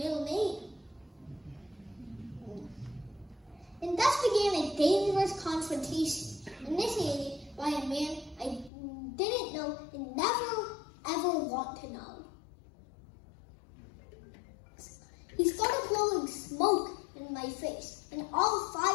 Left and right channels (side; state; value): right; drops out; at 8.7 s